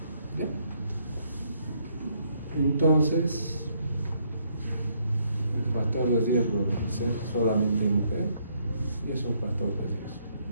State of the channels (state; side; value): inverted; both; correlation -0.71